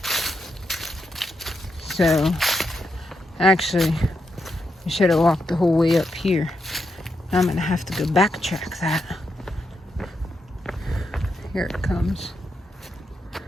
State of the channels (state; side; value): normal; both; correlation 0.83